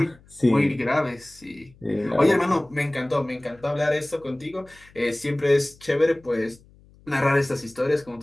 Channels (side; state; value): left; noise; hum, 27 dB below the sound